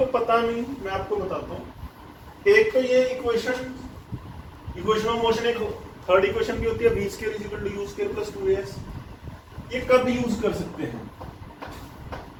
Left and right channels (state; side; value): identical; both; correlation 1.00